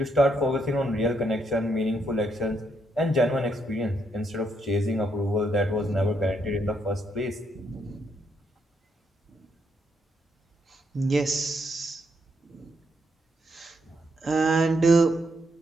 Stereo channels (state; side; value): normal; both; correlation 0.77